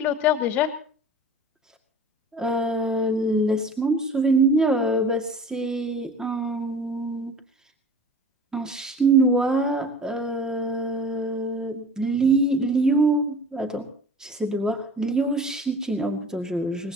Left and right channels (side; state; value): both; normal; correlation 0.42